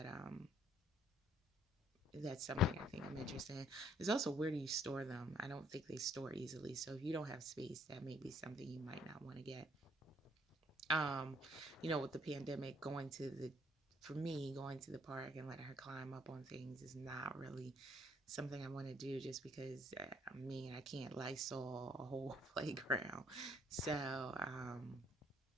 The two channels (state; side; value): normal; both; correlation 0.64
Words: that's something I think I'm interested in. There's also, where do you store them? I don't think they store easily. So if you don't have space, that may be something you might not want to get. With the pandemic, for me, going to the park and letting her climb up on things is not really something I want to do, just because, I can't Lysol a whole playground. So,